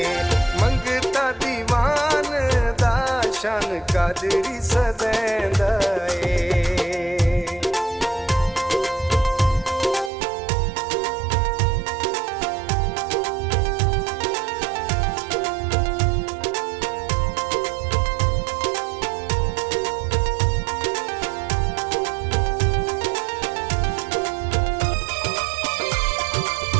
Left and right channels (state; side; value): drops out; left; at 10.1 s